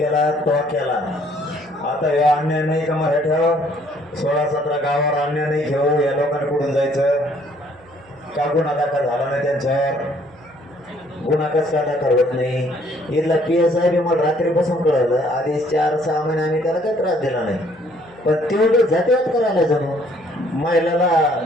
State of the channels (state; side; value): noise; right; hum, 28 dB below the sound